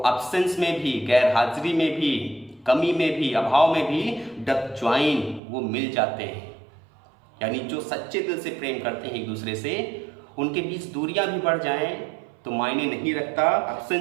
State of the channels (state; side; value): drops out; left; at 5.4 s